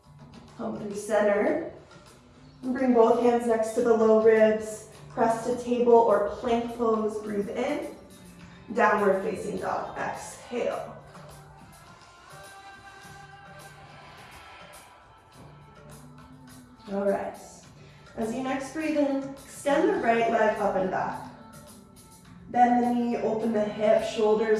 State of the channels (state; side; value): identical; both; correlation 1.00